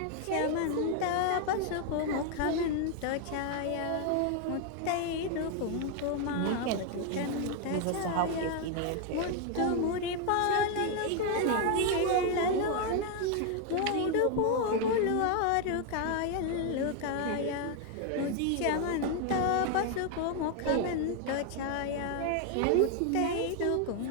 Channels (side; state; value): both; different; correlation 0.01